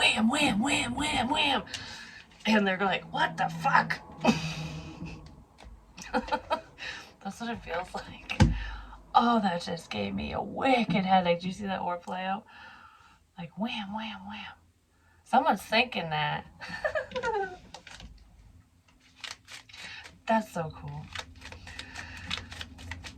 wham, wham, wham, wham. And they're like, what the fuck? That's what it feels like. Oh, that just gave me a wicked headache. Do you see that orb play out? Like, wham, wham, wham. Someone's thinking that. That's so cool.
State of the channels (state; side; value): identical; both; correlation 1.00